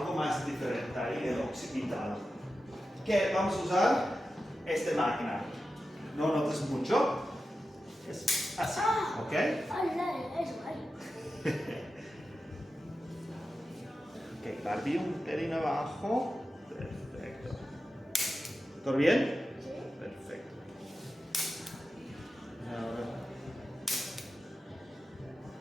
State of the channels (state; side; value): normal; both; correlation 0.92